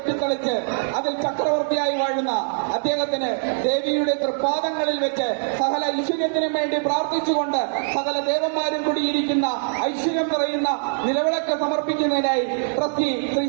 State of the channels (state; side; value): silent; left; 64 dB below the other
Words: അതിൽ ചക്രവർത്തിയായി വാഴുന്ന അദ്ദേഹത്തിന് ദേവിയുടെ തൃപ്പാദങ്ങളിൽ വെച്ച് സകല ഐശ്വര്യത്തിനും വേണ്ടി പ്രാർത്ഥിച്ചുകൊണ്ട് സകല ദേവന്മാരും കൂടിയിരിക്കുന്ന ഐശ്വര്യം നിറയുന്ന നിലവിളക്ക് സമർപ്പിക്കുന്നതിനായി ട്രസ്റ്റി ശ്രീ